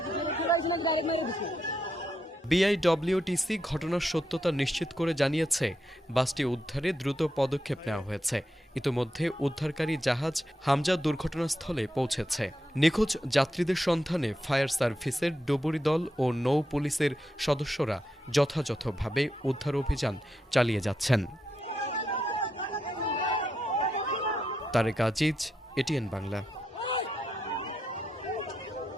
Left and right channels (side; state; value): both; normal; correlation 0.83